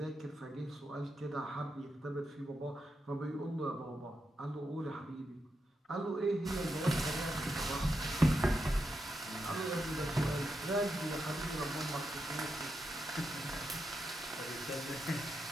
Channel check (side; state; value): both; normal; correlation 0.85